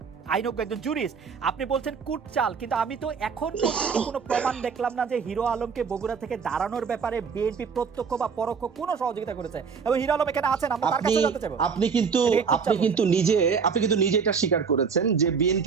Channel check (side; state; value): left; quieter; 6.0 dB